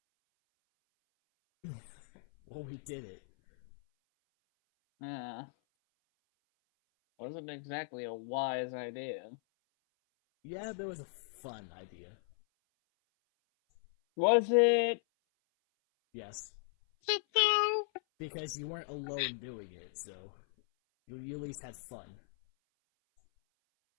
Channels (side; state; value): right; silent; 53 dB below the other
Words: Well, we did it. Yeah. Wasn't exactly a wise idea. Yeah, but it was a fun idea. Was it? Yes. Because you weren't alone doing it, so you at least had fun.